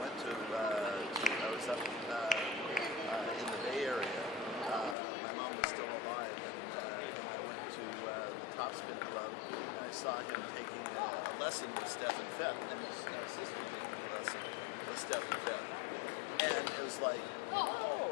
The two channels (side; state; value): right; drops out; at 5.0 s